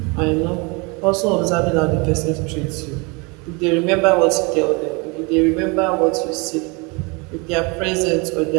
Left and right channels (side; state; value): left; quieter; 29.1 dB